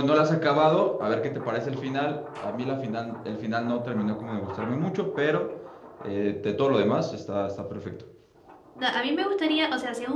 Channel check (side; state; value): both; identical; correlation 1.00